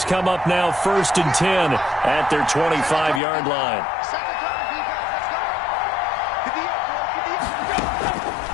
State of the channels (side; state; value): right; drops out; at 3.2 s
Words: come up now 1st and 10 at their 25-yard line.